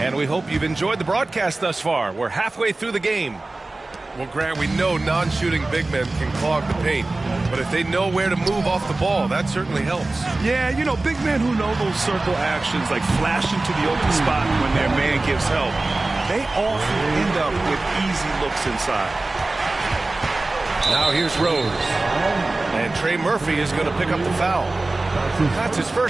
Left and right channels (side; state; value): left; quieter; 3.1 dB